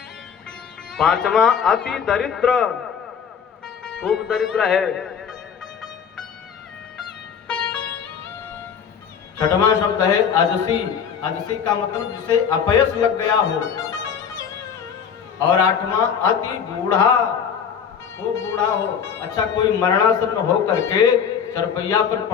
पांचवा अति दरिद्र, खूब दरिद्र है। छठवां शब्द है अजसी। अजसी का मतलब जिसे अपयश लग गया हो। और आठवां अति बूढ़ा, खूब बूढ़ा हो। अच्छा, कोई मरणासन्न हो करके चरपैया पर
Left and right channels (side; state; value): right; quieter; 7.3 dB